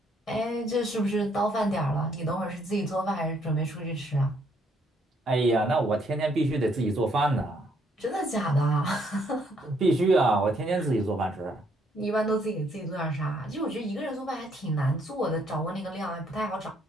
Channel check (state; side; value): normal; both; correlation 0.69